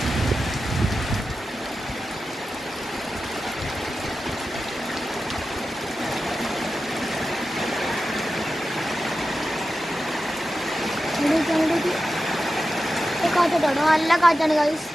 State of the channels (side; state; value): both; normal; correlation 0.92